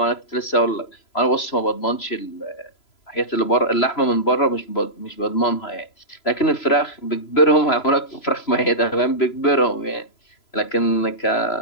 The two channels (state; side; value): late; right; 3.0 ms